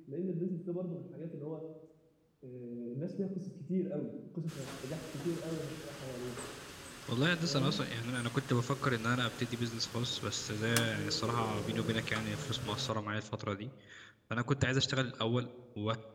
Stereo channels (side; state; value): both; identical; correlation 1.00